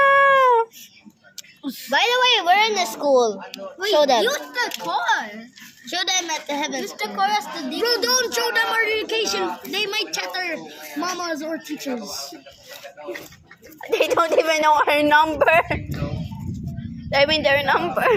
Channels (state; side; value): identical; both; correlation 1.00